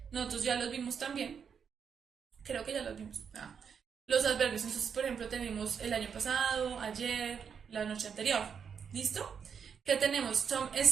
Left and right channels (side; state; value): left; quieter; 6.9 dB